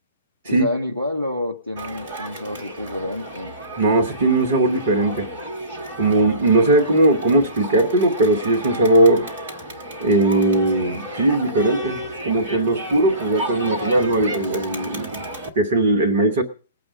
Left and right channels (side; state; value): both; inverted; correlation -0.42